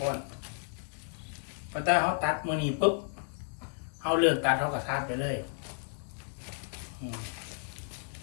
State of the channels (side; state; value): right; silent; 56 dB below the other